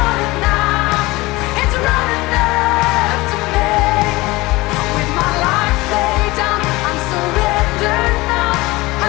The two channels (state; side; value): quieter; right; 21.1 dB